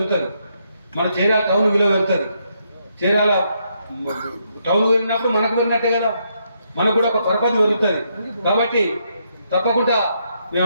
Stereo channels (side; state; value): both; inverted; correlation -0.77